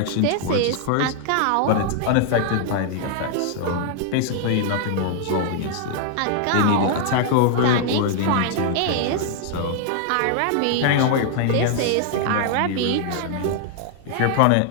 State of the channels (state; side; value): different; both; correlation 0.00